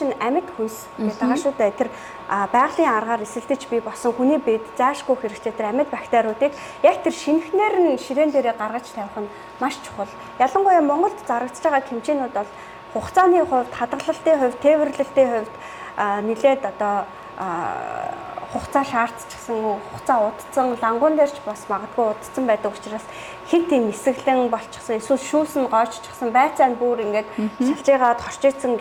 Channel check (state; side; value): identical; both; correlation 1.00